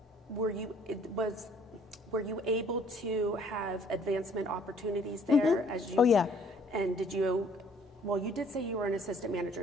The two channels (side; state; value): both; normal; correlation 0.59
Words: Were you able to have advancement opportunities there as you? Oh, yeah. And did you? Well, you did say you were an assistant